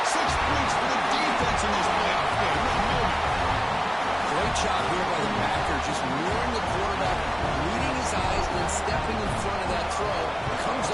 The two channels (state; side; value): identical; both; correlation 1.00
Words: 6 points for the defense in this playoff game. What a moment. Great job here by the backer, just luring the quarterback, reading his eyes, and then stepping in front of that throw. Comes